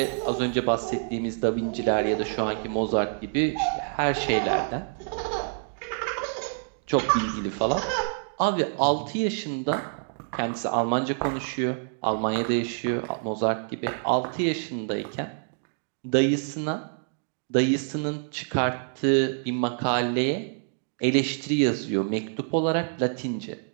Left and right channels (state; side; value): silent; left; digital silence